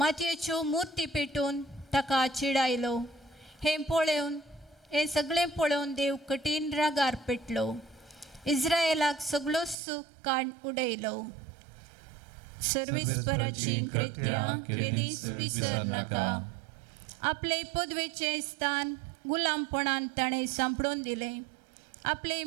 मुर्ती पेटून ताका चिडायलो. हें सगळें पळोवन देव कठीण रागार पेटलो. इस्रायेलाक सगळो सूख काड उडयलो. सर्वेस्पराची कृत्यां केदींच विसर नाका. आपले पदवेचें स्थान गुलामपणान ताणें सांपडून दिलें. आपले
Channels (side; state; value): left; drops out; at 9.8 s